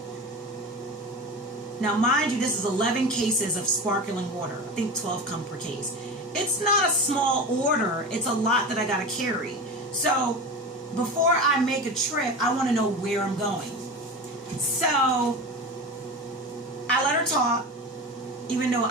Now, mind you, this is 11 cases of sparkling water. I think 12 come per case. It's not a small order. It's a lot that I got to carry. So before I make a trip, I want to know where I'm going. So I let her talk, even though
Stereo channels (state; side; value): normal; both; correlation 0.28